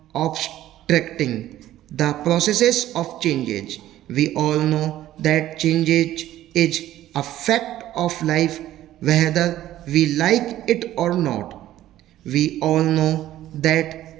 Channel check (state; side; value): quieter; left; 13.6 dB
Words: obstructing the processes of change. We all know that change is a fact of life whether we like it or not. We all know